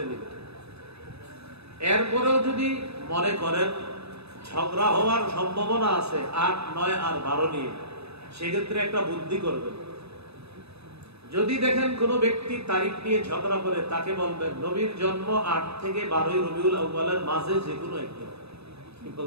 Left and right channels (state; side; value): late; left; 0.79 ms